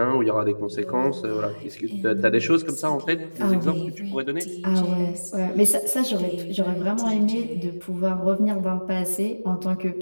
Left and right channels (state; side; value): inverted; both; correlation -1.00